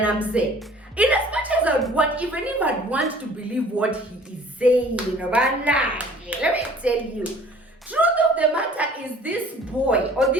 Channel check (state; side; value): normal; both; correlation 0.51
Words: mzee, in as much as I would want, even if I'd want to believe what he is saying, let me tell you, truth of the matter is this boy or